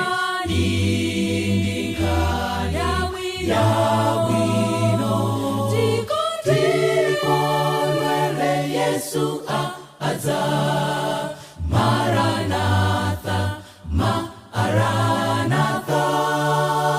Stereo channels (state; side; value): identical; both; correlation 1.00